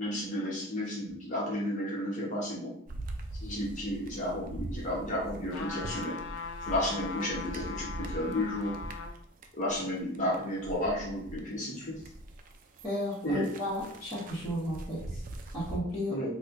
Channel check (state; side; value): normal; both; correlation 0.36